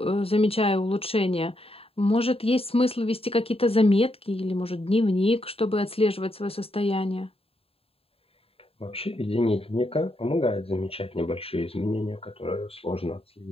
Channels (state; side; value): late; right; 0.28 ms